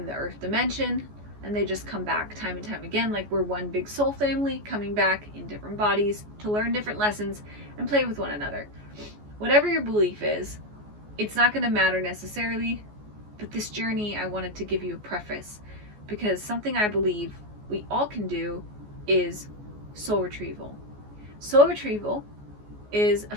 the earth dimension and they just come back time and time again, like we're one big soul family coming back in different bodies to learn different lessons and play with one another. Whatever your belief is, it's not going to matter necessarily, but this journey I wanted to give you a preface, because something I believe we all can do is soul retrieval. Soul retrieval is a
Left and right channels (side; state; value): left; late; 14 ms